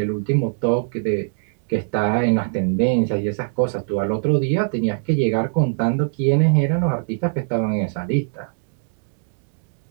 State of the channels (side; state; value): left; silent; digital silence